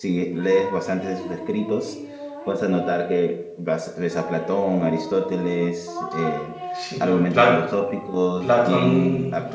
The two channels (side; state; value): both; identical; correlation 1.00